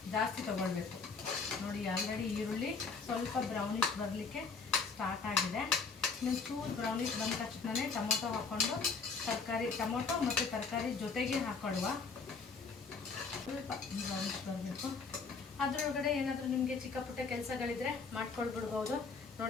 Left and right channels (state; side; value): quieter; right; 4.8 dB